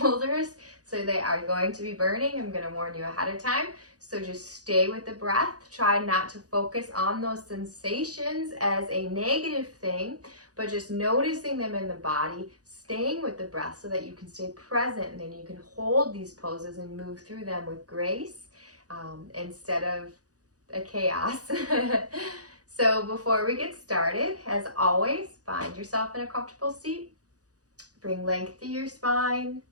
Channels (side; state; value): left; late; 0.67 ms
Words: so they are going to be burning. I'm going to warn you ahead of time. So just stay with the breath. Try not to focus on those sensations as a negative thing, but just noticing them in the body, staying with the breath so that you can stay present, and then you can hold these poses and move through them with grace instead of a chaos. So before we get started, as always, find yourself in a comfortable seat. Bring length to your spine.